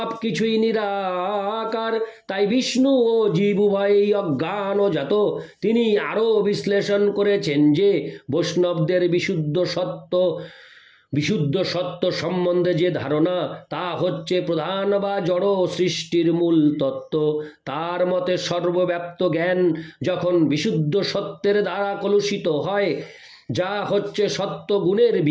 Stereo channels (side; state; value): both; identical; correlation 1.00